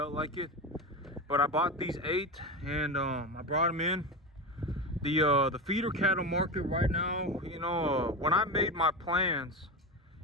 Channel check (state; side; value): normal; both; correlation 0.20